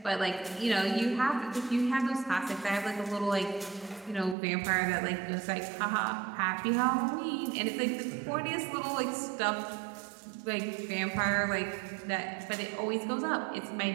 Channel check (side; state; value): left; drops out; at 4.4 s